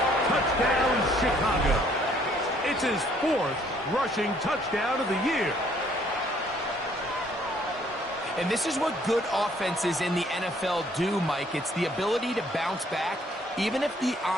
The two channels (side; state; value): both; normal; correlation 0.63